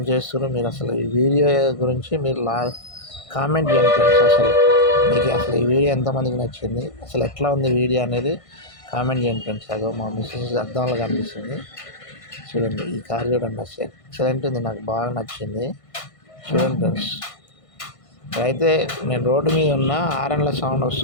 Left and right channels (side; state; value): right; late; 1.5 ms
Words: చేస్తున్నారు మీరు? అసలు ఈ వీడియో గురించి మీరు కామెంట్ చేయండి ఫ్రెండ్స్. అసలు మీకు అసలు ఈ వీడియో ఎంతమందికి నచ్చింది, అసలు ఎట్లా ఉంది వీడియో అనేది కామెంట్ చేయండి ఫ్రెండ్స్. అదో మా మిస్సెస్ అద్దంలో కనిపిస్తుంది. చూడండి ఈ కార్ చూడండి. అసలు ఎక్సలెంట్ ఉంది, నాకు బాగా నచ్చింది. చూడండి ఫ్రెండ్స్. అయితే నేను రోడ్డు మీద ఉన్న హారన్ల సౌండ్